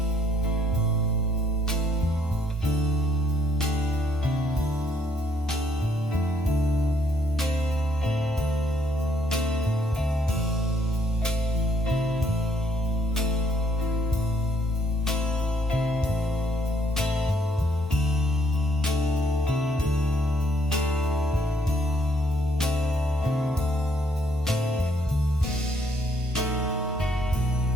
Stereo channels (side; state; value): both; normal; correlation 0.69